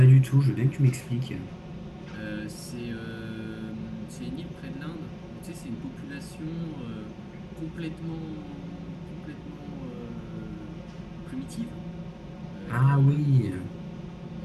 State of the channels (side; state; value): both; identical; correlation 1.00